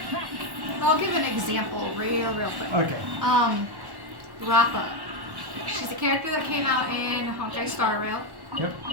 I'll give an example real quick. Okay. Rappa. She's a character that came out in Honkai Star Rail. Yep.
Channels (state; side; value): late; left; 1.1 ms